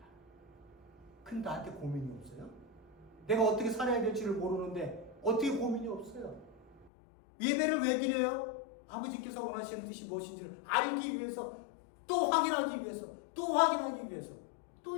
근데 나한테 고민이 없어요? 내가 어떻게 살아야 될지를 모르는데 어떻게 고민이 없어요? 예배를 왜 드려요? 아버지께서 원하시는 뜻이 무엇인지를 알기 위해서, 또 확인하기 위해서,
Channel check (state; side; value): drops out; right; at 6.9 s